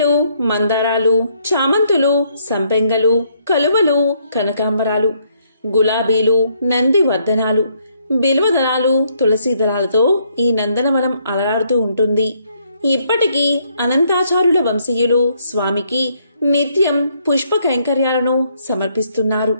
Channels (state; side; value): inverted; both; correlation -0.70